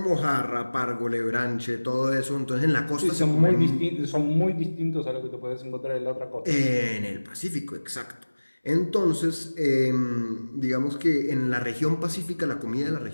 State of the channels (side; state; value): both; inverted; correlation -1.00